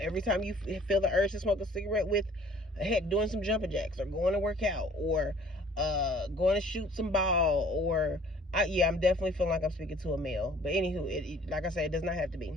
time you feel the urge to smoke a cigarette with, heck, doing some jumping jacks, or going to work out, or going to shoot some ball, or I'm definitely feeling like I'm speaking to a male. But anywho, like I said, it does not have to be.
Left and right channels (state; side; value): normal; both; correlation 0.54